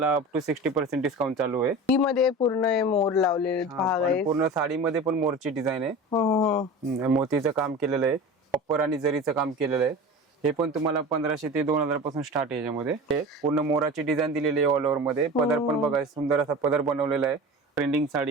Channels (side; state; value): both; normal; correlation 0.34